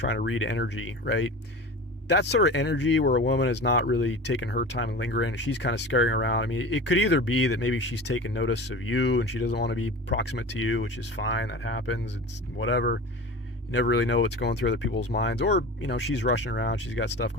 to read energy, right? That sort of energy where a woman is not really taking her time and lingering, she's kind of scurrying around. I mean, it could either be that maybe she's taking notice of you and she doesn't want to be proximate to you, which is fine. That happens. It's whatever. You never really know what's going through other people's minds, or she's rushing around. She's got stuff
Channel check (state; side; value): normal; both; correlation 0.34